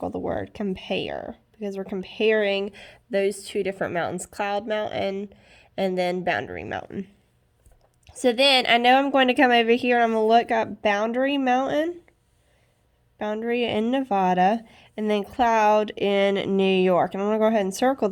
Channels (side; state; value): both; identical; correlation 1.00